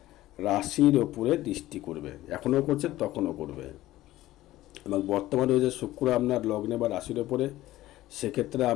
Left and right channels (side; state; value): right; quieter; 15.8 dB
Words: রাশির ওপরে দৃষ্টি করবে, এখনও করছে তখনও করবে। এবং বর্তমানে রয়েছে শুক্র আপনার লগ্নে বা রাশির ওপরে, সেক্ষেত্রে